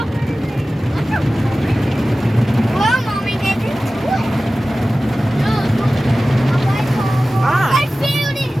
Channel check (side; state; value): both; normal; correlation 0.96